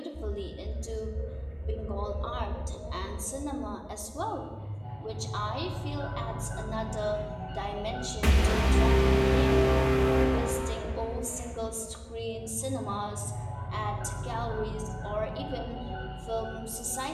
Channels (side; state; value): both; identical; correlation 1.00